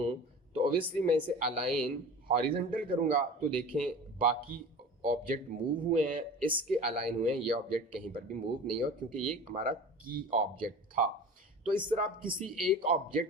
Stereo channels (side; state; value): both; normal; correlation 0.37